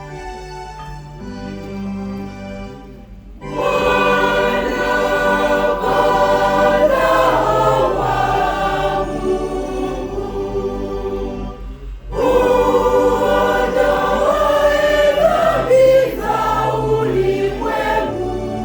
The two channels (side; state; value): both; identical; correlation 1.00